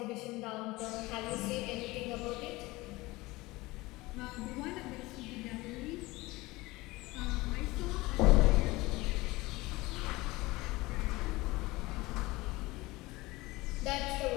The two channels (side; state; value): right; quieter; 21.0 dB